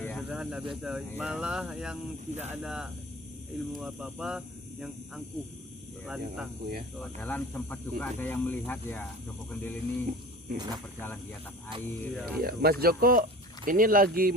ya. sederhana biasa. Iya. Malah yang tidak ada ilmu apa-apa, yang angkuh, Iya, lantang. aku ya. Padahal sempat juga ada yang melihat ya Joko Kendil ini bisa berjalan di atas air. Iya. Ya. Iya, Mas Joko, ini lagi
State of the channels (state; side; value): normal; both; correlation 0.38